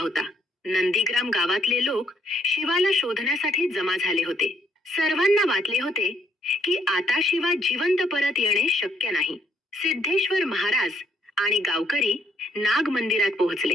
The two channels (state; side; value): normal; both; correlation 0.69